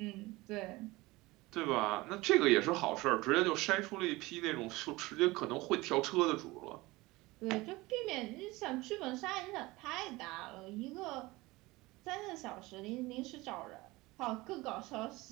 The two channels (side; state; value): left; quieter; 21.1 dB